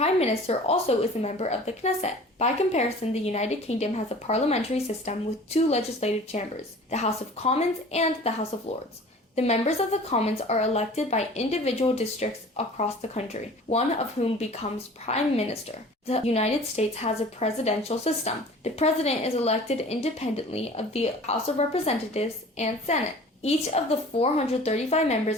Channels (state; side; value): normal; both; correlation 0.44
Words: Minister also is a member of the Knesset. By comparison, the United Kingdom has a parliamentary system with two legislative chambers, the House of Commons and the House of Lords. The members of the Commons are elected by individual districts across the country, one of whom becomes Prime Minister. The United States has a presidential system. The President is elected independently of the House of Representatives and Senate. Each of the 435